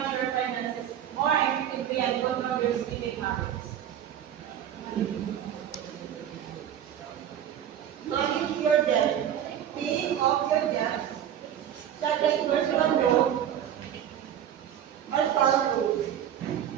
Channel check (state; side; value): quieter; left; 10.2 dB